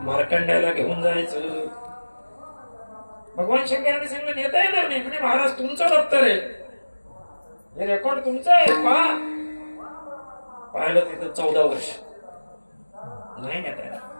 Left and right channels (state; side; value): inverted; both; correlation -1.00